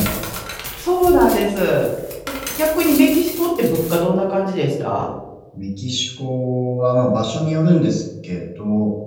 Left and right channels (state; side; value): identical; both; correlation 1.00